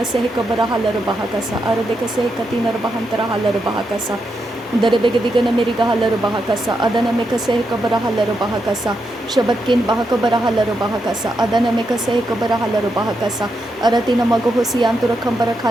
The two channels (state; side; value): normal; both; correlation 0.83